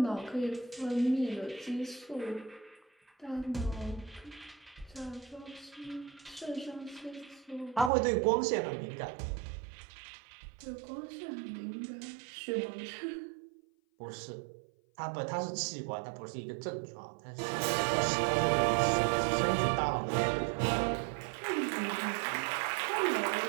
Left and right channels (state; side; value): drops out; left; at 7.9 s